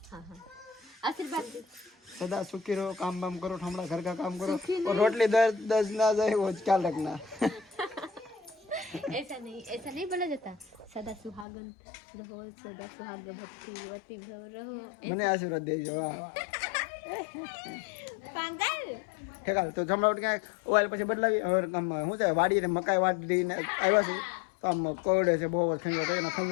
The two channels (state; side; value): drops out; right; at 11.5 s